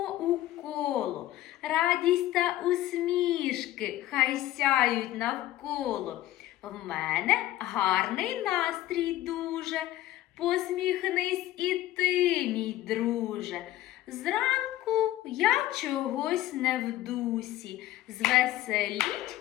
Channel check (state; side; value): quieter; right; 14.6 dB